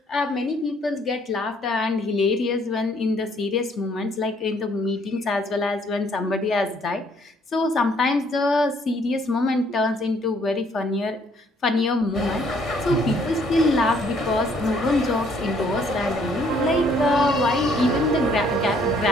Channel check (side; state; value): both; normal; correlation 0.64